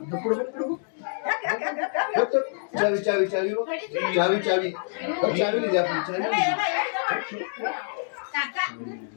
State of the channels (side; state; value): right; silent; digital silence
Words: चावी चावी चावी बघ. चावी चावी बघ. चावी दिली आपली चावी.